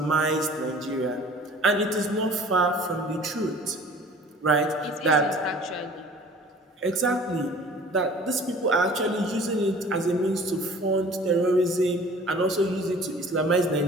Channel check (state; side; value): normal; both; correlation 0.47